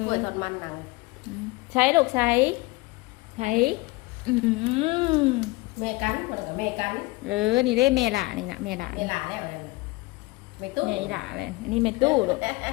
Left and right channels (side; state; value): right; quieter; 22.5 dB